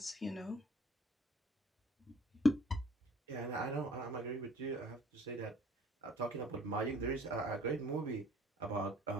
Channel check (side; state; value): both; normal; correlation 0.53